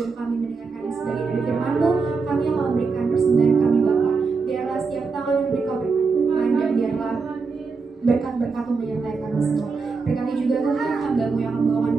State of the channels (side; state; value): left; quieter; 4.7 dB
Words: kami mendengarkan sebagian dari firman-Mu, kami akan memberikan persembahan kami Bapa. Biarlah setiap tangan yang beri Kau berkati Tuhan, dan biarlah berkat-berkat-Mu menyertai kami semua. Berkati juga Tuhan hamba-Mu yang membawakan